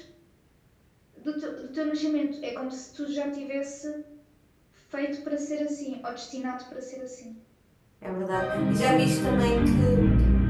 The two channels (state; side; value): identical; both; correlation 1.00